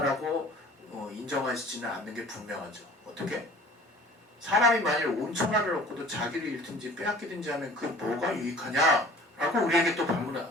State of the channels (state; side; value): normal; both; correlation 0.47